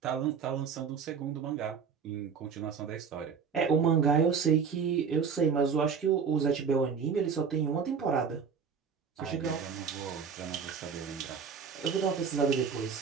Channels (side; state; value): left; quieter; 6.3 dB